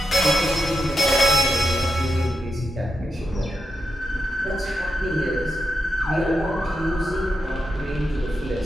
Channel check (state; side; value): normal; both; correlation 0.86